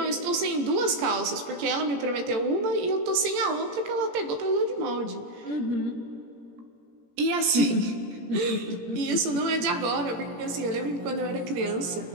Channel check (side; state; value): left; late; 17 ms